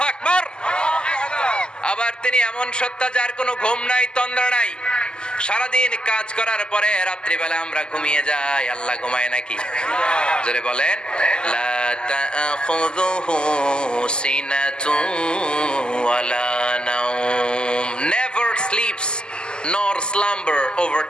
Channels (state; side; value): late; right; 0.047 ms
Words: আকবার। আবার তিনি এমন সত্তা যার কোনো ঘুম নাই, তন্দ্রা নাই। সারাদিন কাজ করার পরে রাত্রিবেলা আমরা ঘুমিয়ে যাই, আল্লাহ ঘুমায় নাকি? জোরে বলেন, লা তাখুযুহু সিনাতুন ওয়ালা নাওম, never sleeps nor slumber